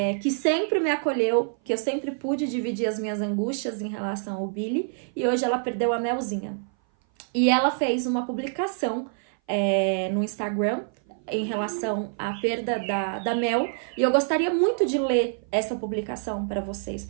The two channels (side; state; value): left; silent; 58 dB below the other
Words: que sempre me acolheu, que eu sempre pude dividir as minhas angústias em relação ao Billy, e hoje ela perdeu a Melzinha. E ela fez uma publicação no Instagram em relação à perda da Mel, e eu gostaria muito de ler essa publicação para vocês.